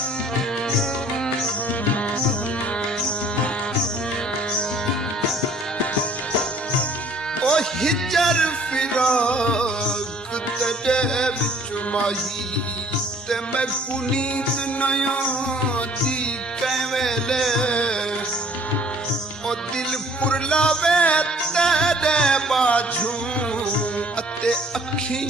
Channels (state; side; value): normal; both; correlation 0.56